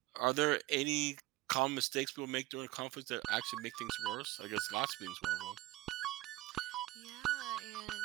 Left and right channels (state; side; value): quieter; left; 18.5 dB